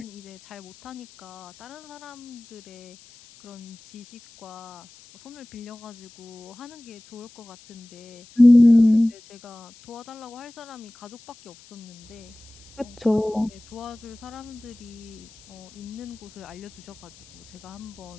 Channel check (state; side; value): noise; left; hiss, 23 dB below the sound